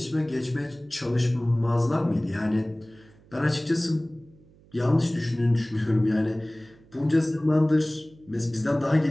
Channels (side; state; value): right; noise; hum, 27 dB below the sound